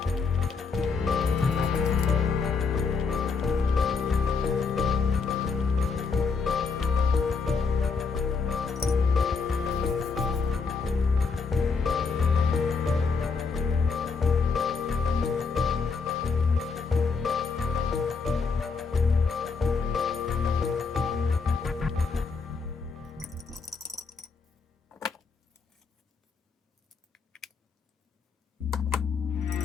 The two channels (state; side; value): quieter; right; 4.9 dB